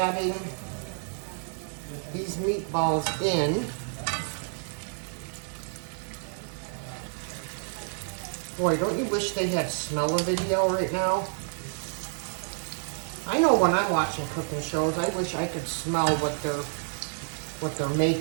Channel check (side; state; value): left; silent; 59 dB below the other